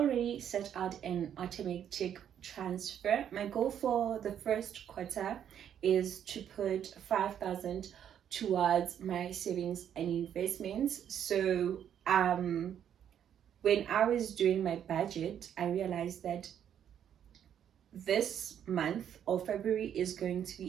set out an automatic transfer. My goal for the first quarter is to put 5,000 towards my savings and investments. So when I was doing my budget, I realized that this month or February is going to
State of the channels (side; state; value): left; quieter; 9.4 dB